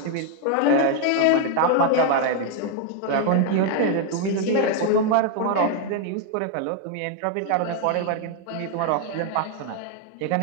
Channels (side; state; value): both; different; correlation 0.00